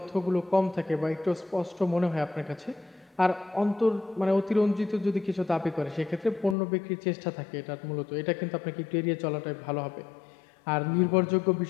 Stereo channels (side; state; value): right; drops out; at 6.6 s